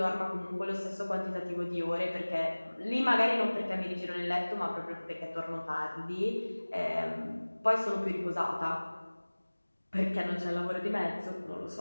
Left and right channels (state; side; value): inverted; both; correlation -1.00